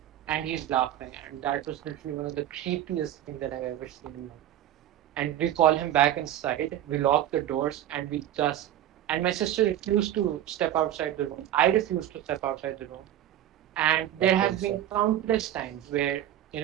and he's laughing. And that was literally one of the creepiest things that I've ever seen in life. And we call him back inside. We lock the doors, and we just. And my sister refused to step outside the room. I refused to step outside the room. And there have been countless times where,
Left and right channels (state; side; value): quieter; left; 12.1 dB